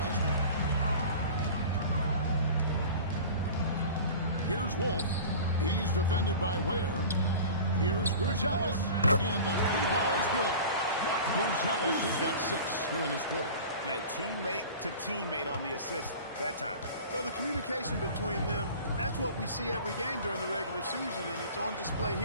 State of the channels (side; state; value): both; inverted; correlation -0.38